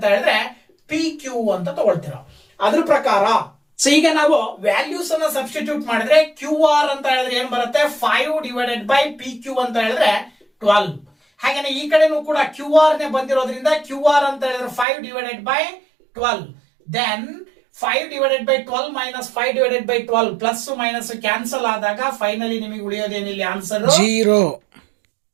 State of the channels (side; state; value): left; drops out; at 14.9 s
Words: ಹೇಳಿದ್ರೆ ಪಿ ಕ್ಯೂ ಅಂತ ತಗೊಳ್ತೀರಾ. ಅದ್ರ ಪ್ರಕಾರ ಸೊ ಈಗ ನಾವು ವ್ಯಾಲ್ಯೂಸ್ ಅನ್ನ ಸಬ್ಸ್ಟಿಟ್ಯೂಟ್ ಮಾಡಿದ್ರೆ ಕ್ಯೂ ಆರ್ ಅಂತ ಹೇಳಿದ್ರೆ ಏನ್ ಬರುತ್ತೆ 5 ಡಿವೈಡೆಡ್ ಬೈ ಪಿ ಕ್ಯೂ ಅಂತ ಹೇಳಿದ್ರೆ 12. ಹಾಗೇನೆ ಈ ಕಡೆನೂ ಕೂಡ ಕ್ಯೂ ಆರ್ ನೇ ಬಂದಿರೋದ್ರಿಂದ ಕ್ಯೂ ಆರ್ ಅಂತ ಹೇಳಿದ್ರೆ 5 divided by 12. Then 5 divided by 12 minus 5 divided by 12 plus minus cancel ಆದಾಗ ಫೈನಲಿ ನಿಮಗೆ ಉಳಿಯೋದೇನಿಲ್ಲ ಆನ್ಸರ್ 0.